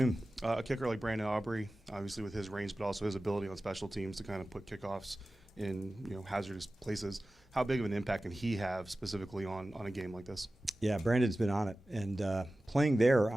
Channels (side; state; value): both; normal; correlation 0.96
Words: A kicker like Brandon Aubrey, obviously with his range, but also his ability on special teams to kind of put kickoffs in hazardous places. How big of an impact can he have specifically on a game like this? Yeah, Brandon's been on it, and playing there,